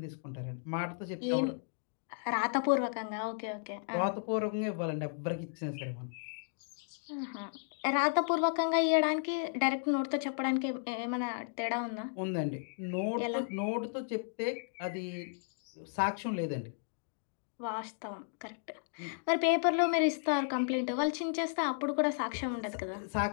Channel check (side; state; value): right; silent; digital silence